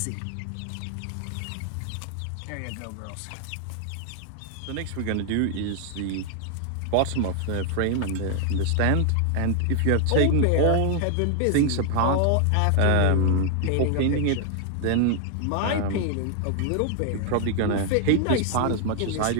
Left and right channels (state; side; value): different; both; correlation 0.00